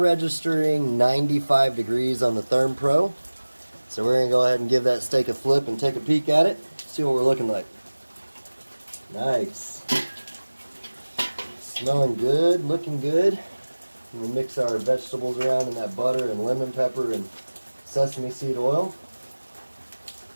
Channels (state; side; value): inverted; both; correlation -1.00